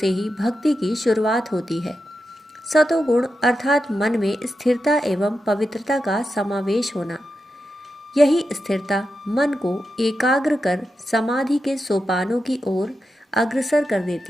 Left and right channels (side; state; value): both; normal; correlation 0.88